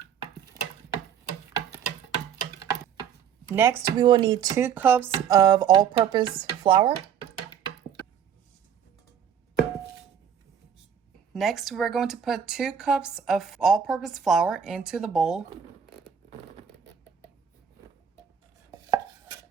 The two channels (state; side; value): quieter; left; 8.3 dB